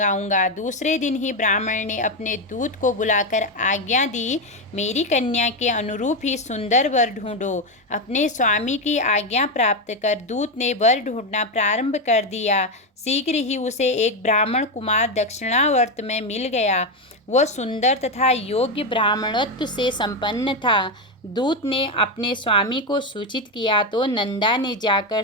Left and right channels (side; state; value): both; normal; correlation 0.09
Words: दूसरे दिन ही ब्राह्मण ने अपने दूत को बुलाकर आज्ञा दी, मेरी कन्या के अनुरूप ही सुंदर वर ढूंढो। अपने स्वामी की आज्ञा प्राप्त कर दूत ने वर ढूंढना प्रारंभ कर दिया। शीघ्र ही उसे एक ब्राह्मण कुमार दक्षिणावर्त में मिल गया। वह सुंदर तथा योग्य ब्राह्मणत्व से संपन्न था। दूत ने अपने स्वामी को सूचित किया तो नंदा ने जाकर